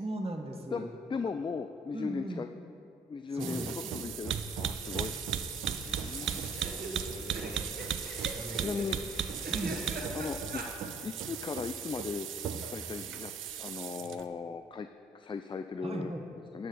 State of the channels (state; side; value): normal; both; correlation 0.61